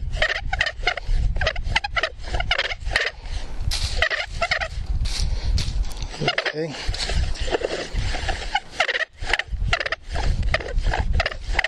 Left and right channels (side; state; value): both; identical; correlation 1.00